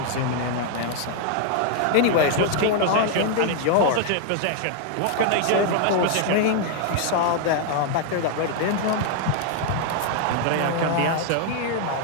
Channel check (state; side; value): different; both; correlation 0.00